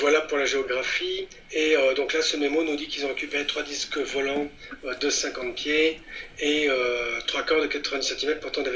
pour la géographie. Et donc là, ce mémo nous dit qu'ils ont récupéré 3 disques volants de 50 pieds et 3 corps de 90 cm portant des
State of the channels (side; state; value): both; identical; correlation 1.00